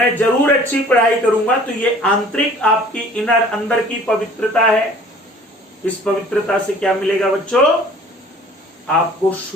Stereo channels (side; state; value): both; normal; correlation 0.51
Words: जरूर अच्छी पढ़ाई करूंगा। तो ये आंतरिक आपकी इनर अंदर की पवित्रता है। इस पवित्रता से क्या मिलेगा बच्चों, आपको